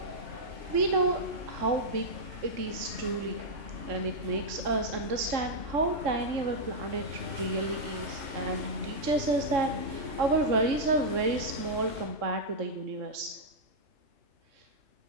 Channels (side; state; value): left; late; 3.6 ms